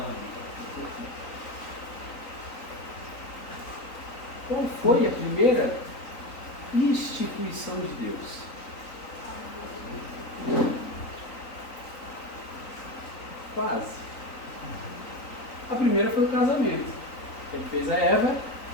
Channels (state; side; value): late; right; 3.9 ms